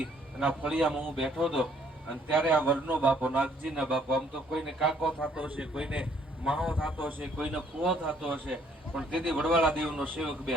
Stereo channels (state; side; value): normal; both; correlation 0.64